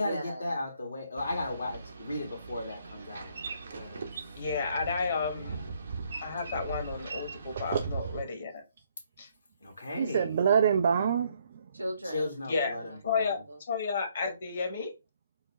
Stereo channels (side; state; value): both; inverted; correlation -0.68